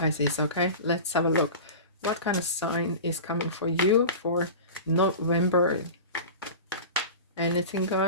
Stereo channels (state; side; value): inverted; both; correlation -0.32